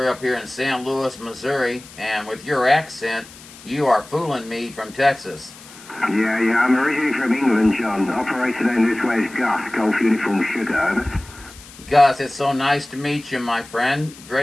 up here in St. Louis, Missouri, and with your accent, you are fooling me from Texas. Yeah, I'm originally from England, John. Operator down this way is Gus, Golf Uniform Sugar, over. Gus, it's so nice to meet you, my friend.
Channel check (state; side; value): noise; left; hiss, 20 dB below the sound